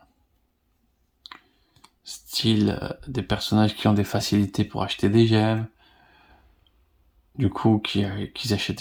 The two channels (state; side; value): identical; both; correlation 1.00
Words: Style des personnages qui ont des facilités pour acheter des gemmes, du coup qui achètent